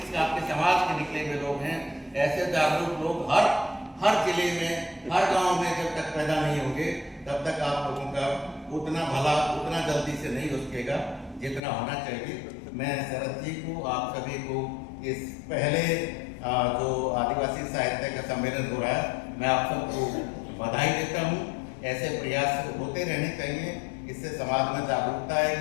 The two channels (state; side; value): drops out; right; at 11.6 s